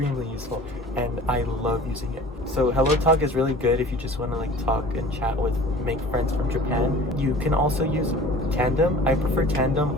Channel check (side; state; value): both; normal; correlation 0.43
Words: useful, and I love using it. So Hello Talk is really good if you just want to like talk and chat with, make friends from Japan. You can also use Tandem. I prefer